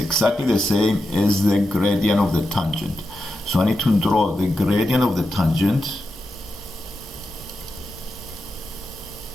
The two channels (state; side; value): normal; both; correlation 0.89